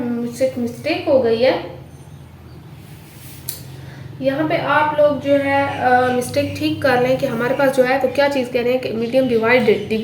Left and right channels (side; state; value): both; identical; correlation 1.00